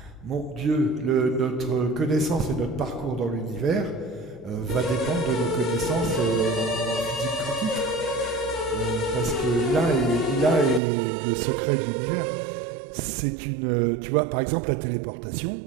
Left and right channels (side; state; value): left; drops out; at 10.8 s